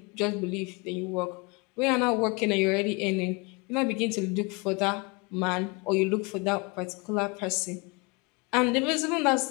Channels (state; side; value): quieter; right; 28.4 dB